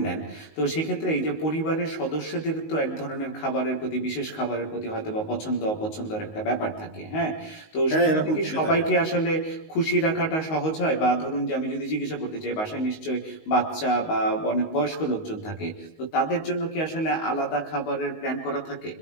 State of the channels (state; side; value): late; right; 19 ms